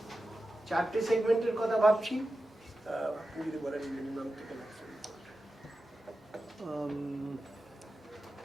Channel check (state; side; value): normal; both; correlation 0.92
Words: 4টে সেগমেন্টের কথা ভাবছি। যদি বলেন মিনিমাম থেকে